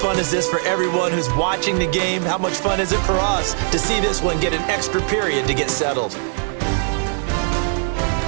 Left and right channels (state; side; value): silent; left; 57 dB below the other